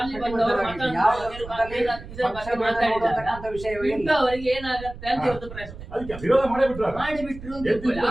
ಅವರಿಗೆ ಏನಾಗತ್ತೆ ಅಂತ ಇವತ್ತು ಪ್ರಶ್ನೆ. ಅದಕ್ಕೆ ವಿರೋಧ ಮಾಡಿಬಿಟ್ರು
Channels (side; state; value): right; noise; rumble, 14 dB below the sound